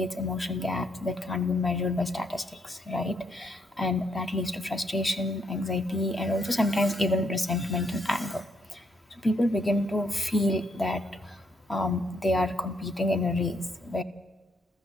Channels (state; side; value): normal; both; correlation 0.73